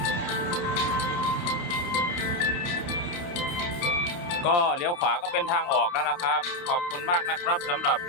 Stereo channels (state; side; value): late; right; 29 ms